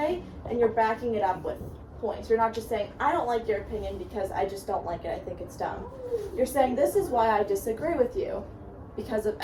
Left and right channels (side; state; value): both; identical; correlation 1.00